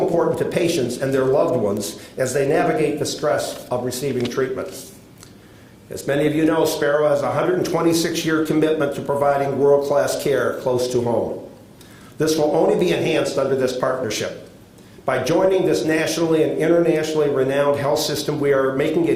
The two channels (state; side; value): identical; both; correlation 1.00